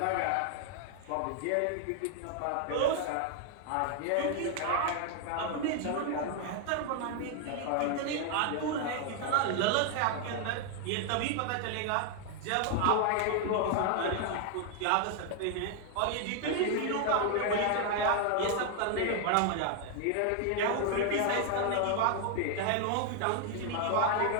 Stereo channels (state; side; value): different; both; correlation 0.00